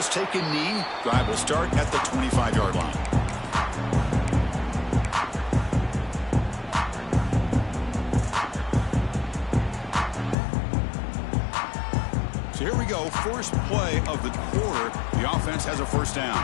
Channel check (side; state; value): right; drops out; at 10.4 s